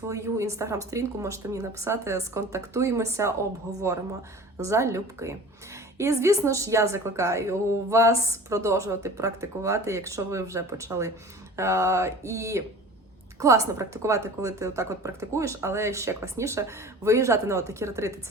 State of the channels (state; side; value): normal; both; correlation 0.41